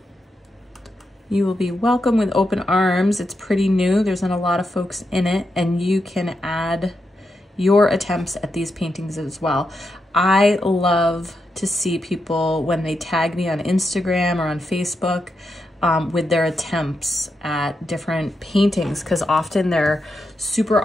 You will be welcome with open arms. It's pretty new. There's not a lot of folks in it, and you can add your attempts at these paintings as well. I love to see people when they tag me on Instagram or on Facebook with their attempts at different paintings, because often they're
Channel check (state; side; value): normal; both; correlation 0.85